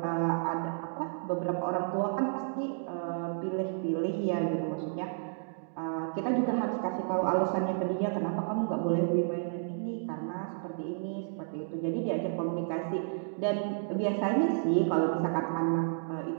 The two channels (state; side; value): silent; left; digital silence